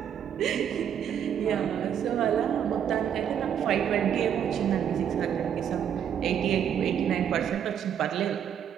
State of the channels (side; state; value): left; quieter; 8.9 dB